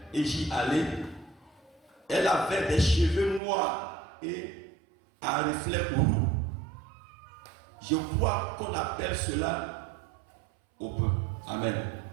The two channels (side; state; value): left; drops out; at 3.4 s